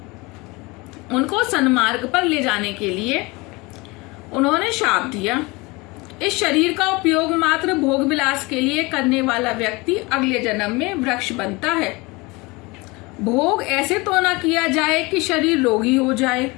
उनको सन्मार्ग पर ले जाने के लिए उन्होंने शाप दिया। इस शरीर का उपयोग मात्र भोग विलास के लिए करने वाला व्यक्ति अगले जन्म में वृक्ष बनता है। भोग ऐसे तो न किया जाए कि शरीर रोगी हो जाए।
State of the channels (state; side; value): quieter; right; 24.7 dB